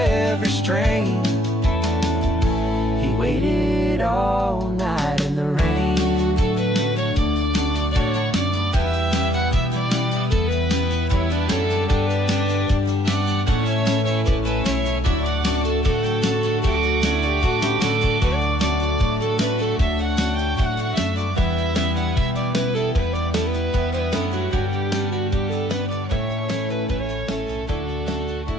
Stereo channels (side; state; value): both; normal; correlation 0.66